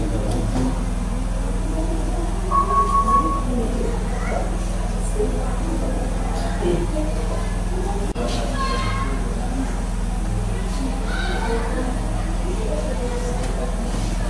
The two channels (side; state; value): both; identical; correlation 1.00